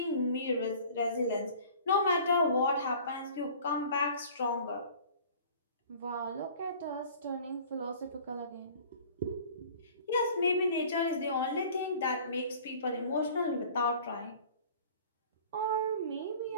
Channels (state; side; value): inverted; both; correlation -0.46